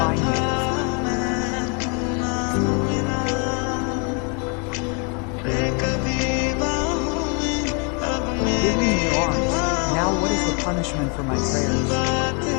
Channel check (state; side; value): quieter; right; 35.7 dB